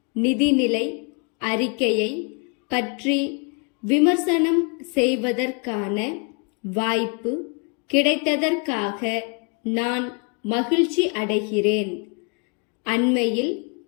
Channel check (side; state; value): right; quieter; 35.9 dB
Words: நிதிநிலை அறிக்கையை பற்றி விமர்சனம் செய்வதற்கான வாய்ப்பு கிடைத்ததற்காக நான் மகிழ்ச்சி அடைகிறேன். அண்மையில்